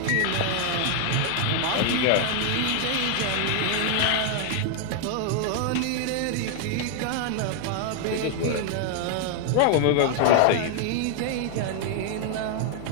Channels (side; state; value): both; different; correlation 0.00